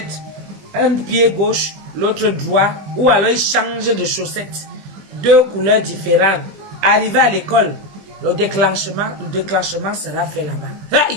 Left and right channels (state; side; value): late; left; 20 ms